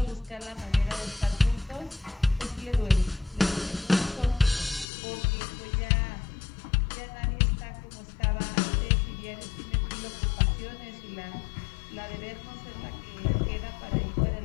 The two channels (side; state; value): right; drops out; at 4.9 s